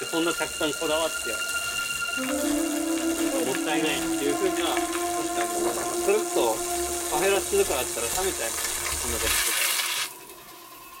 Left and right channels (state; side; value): identical; both; correlation 1.00